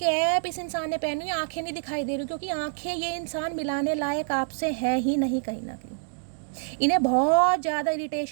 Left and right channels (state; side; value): silent; left; digital silence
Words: इस इंसान ने पहनी, आंखें नहीं दिखाई दे रही क्योंकि आंखें ये इंसान मिलाने लायक आपसे है ही नहीं कहीं ना कहीं। इन्हें बहुत ज़्यादा